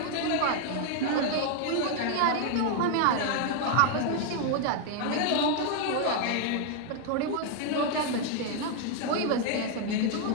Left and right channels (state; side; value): different; both; correlation 0.00